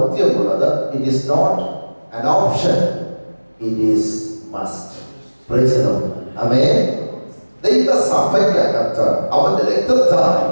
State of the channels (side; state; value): both; inverted; correlation -1.00